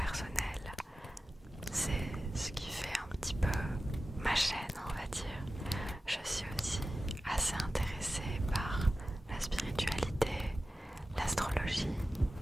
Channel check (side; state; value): both; normal; correlation 0.95